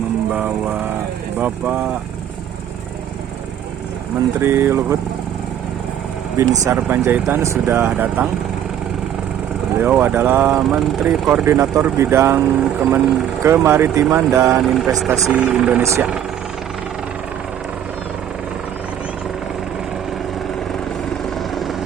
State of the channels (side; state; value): left; quieter; 10.1 dB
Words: Bapak Menteri Luhut Binsar Panjaitan sudah datang. Beliau adalah Menteri Koordinator Bidang Kemaritiman dan Investasi Indonesia.